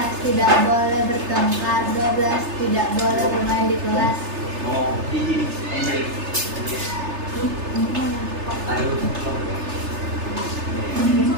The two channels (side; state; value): left; late; 3.3 ms